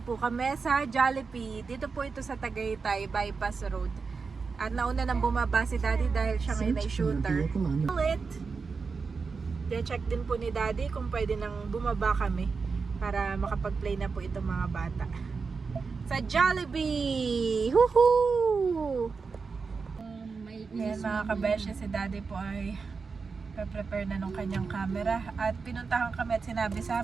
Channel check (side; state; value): left; quieter; 4.9 dB